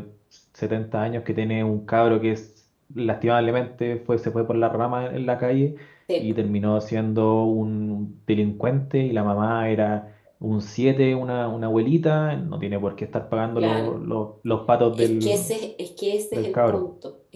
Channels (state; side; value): identical; both; correlation 1.00